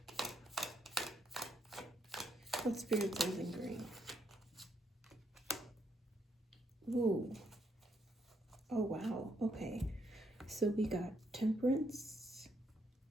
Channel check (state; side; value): normal; both; correlation 0.75